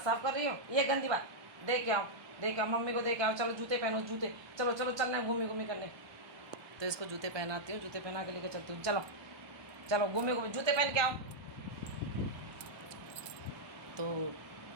साफ़ कर रही हो, ये गंदी बात। देख के आओ, देख आओ, मम्मी को देख आओ। चलो जूते पहनो, जूते। चलो चलो चलना है घूमी घूमी करने। तो इसको जूते पहनाती हूँ, जूते पहना के लेकर चलती हूँ। चलो चलो घूमे घूमे, जूते पहन के आओ। तो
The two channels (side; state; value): left; late; 1.2 ms